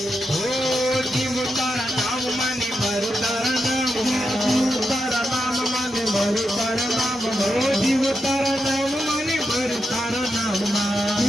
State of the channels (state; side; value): normal; both; correlation 0.86